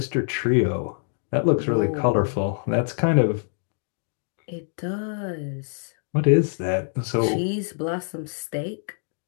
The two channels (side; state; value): right; silent; digital silence